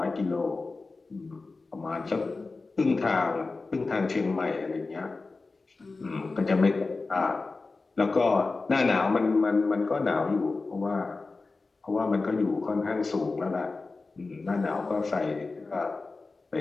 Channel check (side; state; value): right; quieter; 3.8 dB